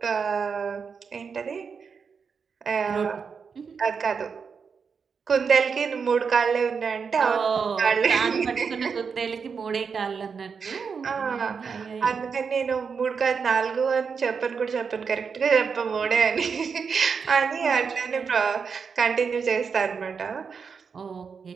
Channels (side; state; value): left; quieter; 5.9 dB